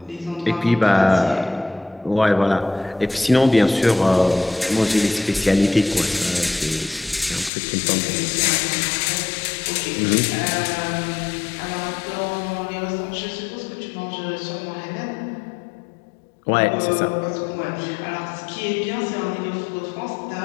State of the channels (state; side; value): drops out; right; at 7.5 s